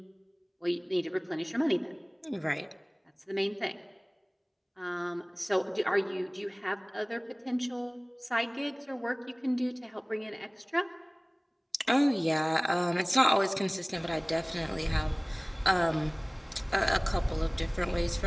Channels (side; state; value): both; identical; correlation 1.00